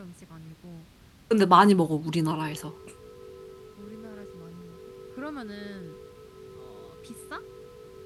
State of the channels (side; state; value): both; identical; correlation 1.00